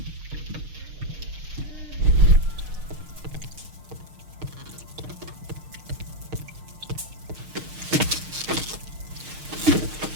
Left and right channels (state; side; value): late; left; 6.5 ms